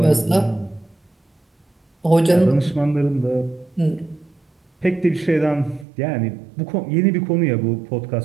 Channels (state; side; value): drops out; left; at 5.9 s